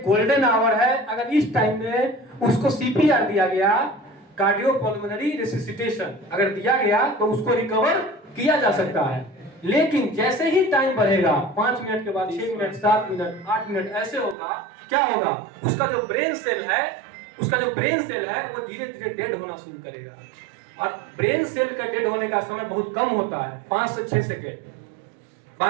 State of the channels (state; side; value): drops out; left; at 14.4 s